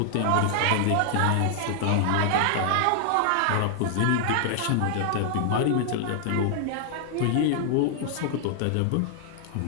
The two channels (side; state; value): both; different; correlation -0.01